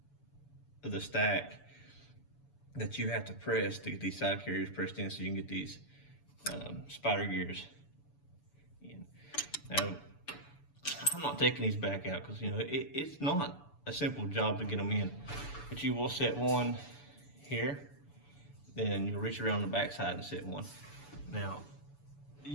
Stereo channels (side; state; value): right; late; 7.0 ms